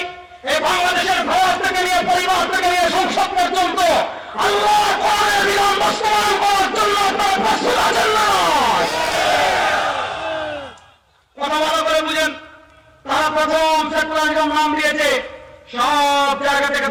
এই বাংলাদেশের ঘর থেকে নিয়ে পরিবার থেকে নিয়ে সংসদ পর্যন্ত আল্লাহর কোরআনের বিধান বাস্তবায়ন করার জন্য আপনারা প্রস্তুত আছেন না? কথা ভালো করে বুঝেন। তারা প্রথম সেকুলারিজম নাম দিয়েছে সব জায়গা থেকে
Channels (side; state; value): both; identical; correlation 1.00